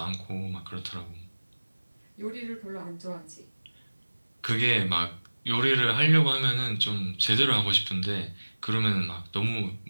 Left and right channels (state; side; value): inverted; both; correlation -1.00